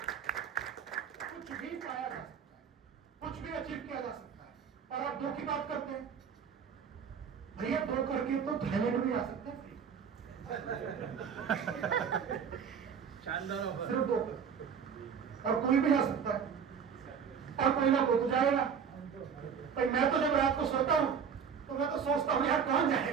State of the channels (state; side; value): quieter; left; 7.0 dB